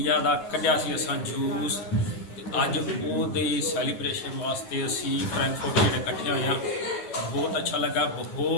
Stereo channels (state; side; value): late; right; 11 ms